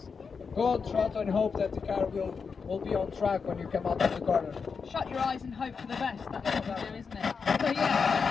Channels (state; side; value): quieter; right; 5.5 dB